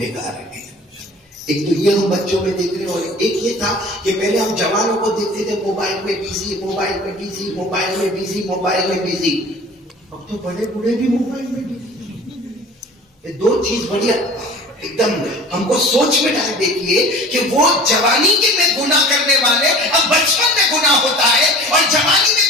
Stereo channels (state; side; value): normal; both; correlation 0.43